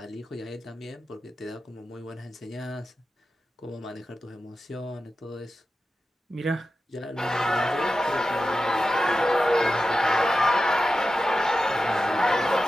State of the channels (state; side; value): normal; both; correlation 0.92